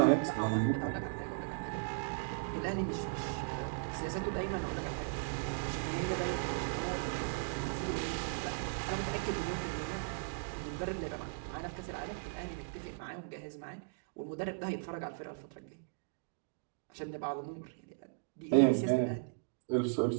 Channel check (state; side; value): silent; left; digital silence